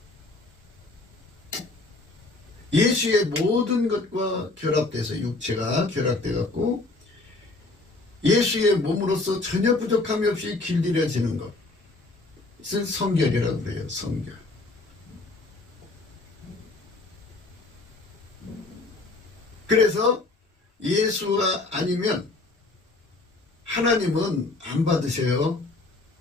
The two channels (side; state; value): right; quieter; 3.2 dB